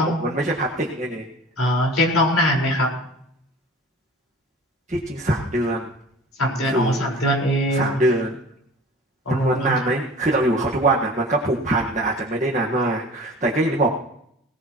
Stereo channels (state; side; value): normal; both; correlation 0.41